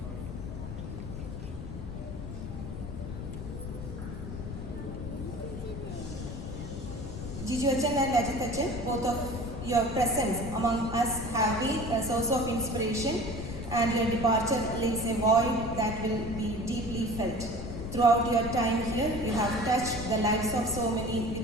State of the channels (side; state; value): left; noise; rumble, 7 dB below the sound